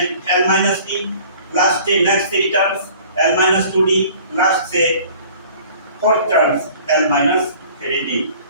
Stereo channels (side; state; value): both; inverted; correlation -0.49